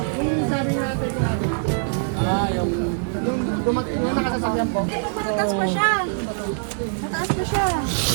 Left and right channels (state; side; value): silent; left; digital silence